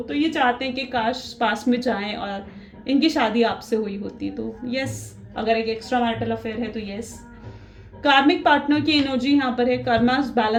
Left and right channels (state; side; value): identical; both; correlation 1.00